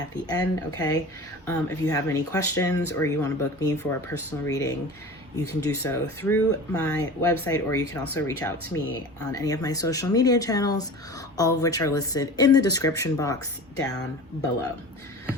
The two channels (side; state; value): both; normal; correlation 0.36